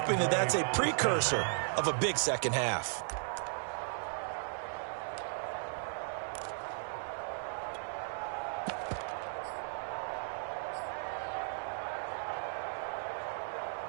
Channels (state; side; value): silent; left; 54 dB below the other